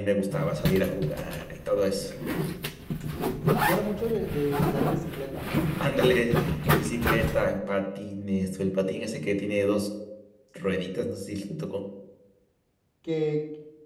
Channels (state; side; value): identical; both; correlation 1.00